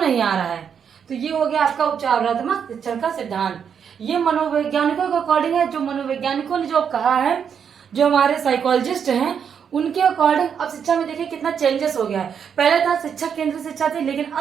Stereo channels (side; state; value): left; quieter; 7.4 dB